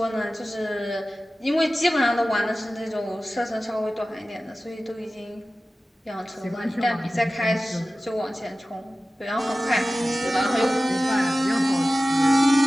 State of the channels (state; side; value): normal; both; correlation 0.96